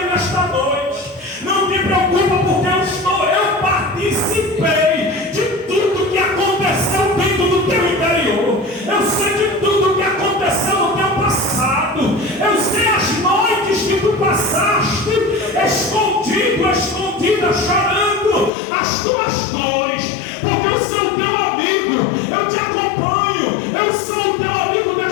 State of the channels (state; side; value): drops out; right; at 18.5 s